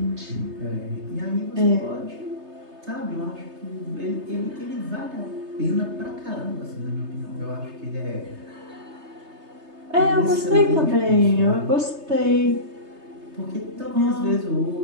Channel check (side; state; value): left; late; 3.3 ms